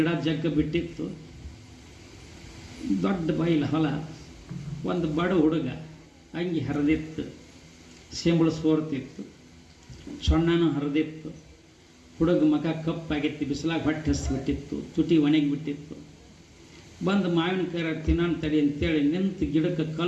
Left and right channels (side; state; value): both; identical; correlation 1.00